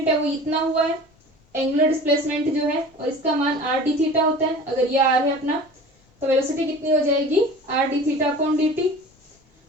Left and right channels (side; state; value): both; normal; correlation 0.40